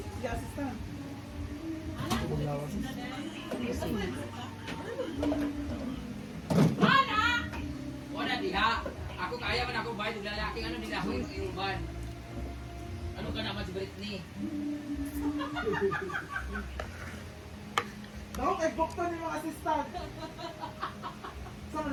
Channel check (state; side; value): identical; both; correlation 1.00